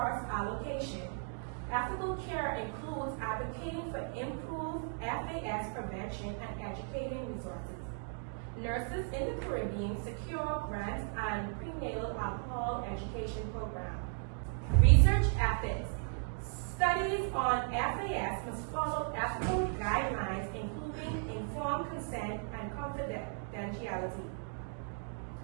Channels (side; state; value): left; silent; 54 dB below the other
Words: allocation. Ethical care includes advocating for improved FAS prevention and educating resources. Nurses in the Caribbean secure grants and prenatal alcohol education programs. Research ethics. Studies on FAS must follow ethical guidelines, including informed consent and confidentiality.